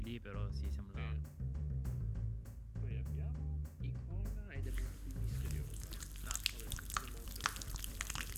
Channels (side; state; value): both; identical; correlation 1.00